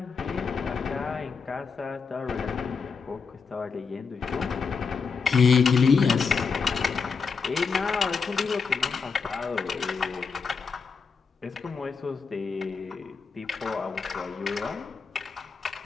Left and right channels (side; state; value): right; quieter; 5.3 dB